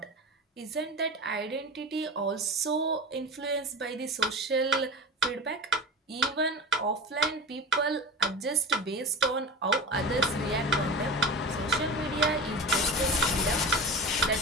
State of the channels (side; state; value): both; normal; correlation 0.30